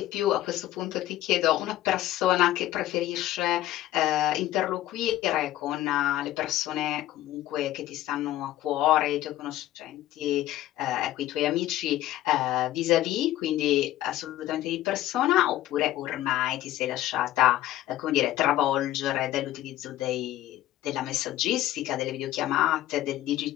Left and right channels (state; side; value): quieter; right; 14.3 dB